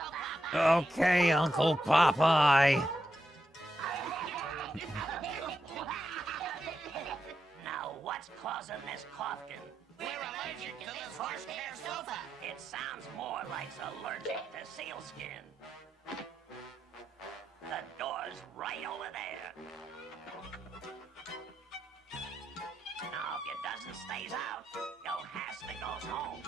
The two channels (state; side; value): normal; both; correlation 0.85